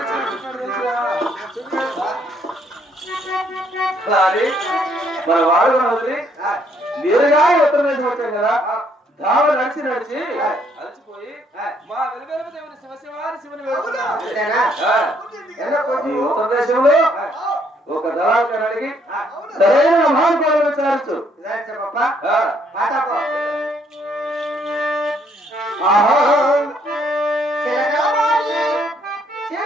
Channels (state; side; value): normal; both; correlation 0.68